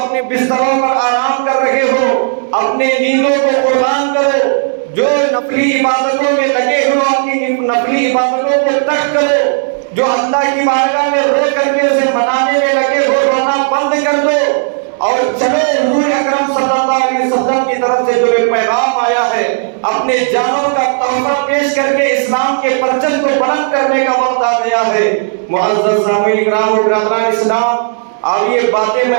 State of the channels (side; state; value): left; silent; digital silence